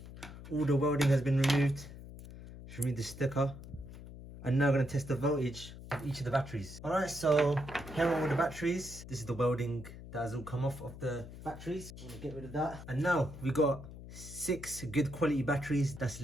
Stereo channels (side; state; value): left; noise; hum, 14 dB below the sound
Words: all the welding has been removed. Just remove the sticker. And now I'm going to test the voltage of each of the batteries. Alright, so here are all the batteries. This is the welding that has all come off of the batteries. I'm going to get rid of that. And now we got 6 good quality batteries that's